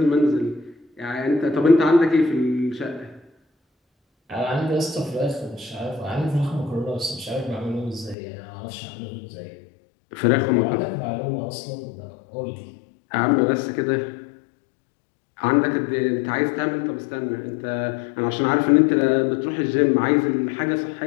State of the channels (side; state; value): right; drops out; at 8.2 s